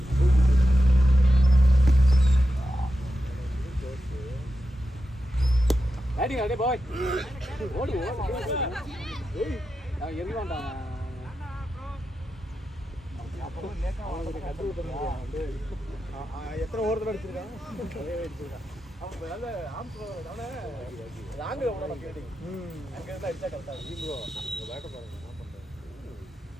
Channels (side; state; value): both; normal; correlation 0.89